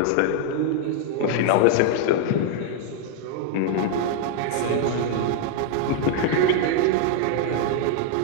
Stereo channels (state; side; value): different; both; correlation 0.00